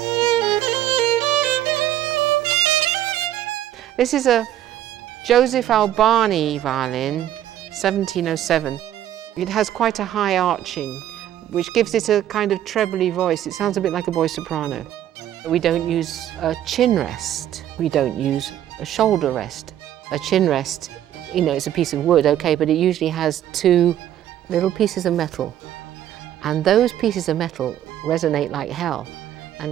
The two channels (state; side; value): quieter; left; 11.8 dB